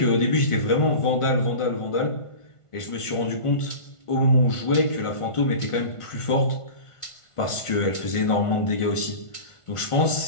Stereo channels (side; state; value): right; late; 1.5 ms